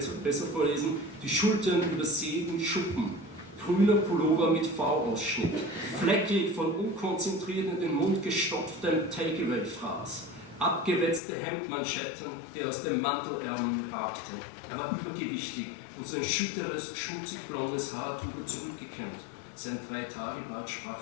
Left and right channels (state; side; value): drops out; right; at 11.2 s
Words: vorlesen. Die Schultern übersäten Schuppen, grüner Pullover mit V-Ausschnitt, fleckig von unkonzentriert in den Mund gestopftem Takeaway-Fraß, abgewetzte Hemdmanschetten, die aus dem Mantelärmeln ragten. Er war übergewichtig und sein schütteres, schmutzig blondes Haar trug er zurückgekämmt. Sein 3-Tage-Bart sprach